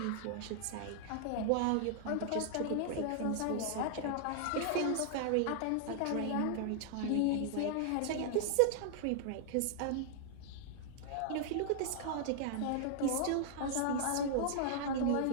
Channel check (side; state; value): both; different; correlation -0.01